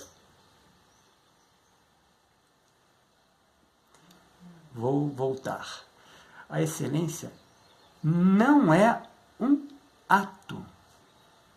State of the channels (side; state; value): both; identical; correlation 1.00